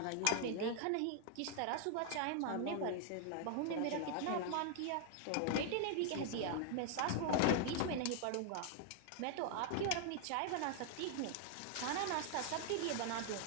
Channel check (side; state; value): both; different; correlation 0.00